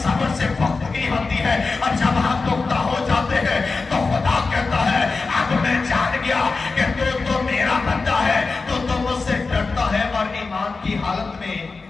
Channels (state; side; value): quieter; right; 4.1 dB